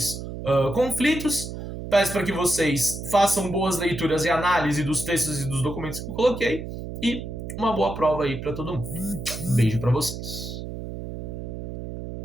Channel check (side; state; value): right; noise; hum, 8 dB below the sound